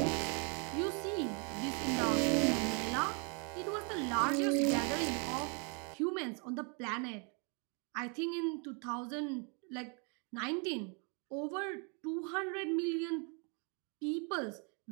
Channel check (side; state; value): left; quieter; 36.1 dB